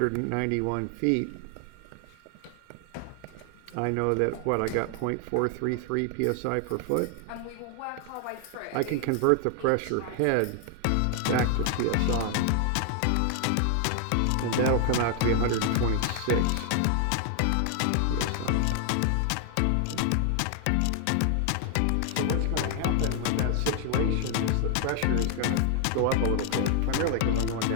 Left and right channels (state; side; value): different; both; correlation 0.00